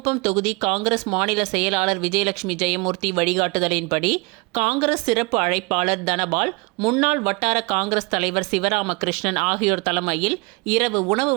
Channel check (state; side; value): quieter; left; 27.9 dB